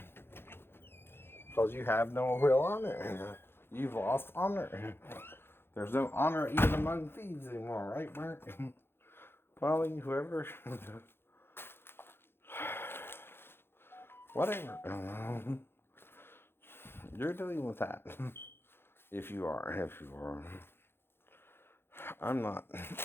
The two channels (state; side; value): late; right; 0.11 ms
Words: Because you have no real honor. You've lost honor. There's no honor even among thieves anymore, right, Mark? Polly, whoever. Whatever. You're dealing with that. If you are. I'm not